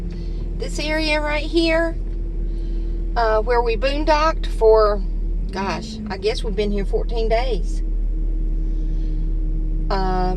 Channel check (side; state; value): both; identical; correlation 1.00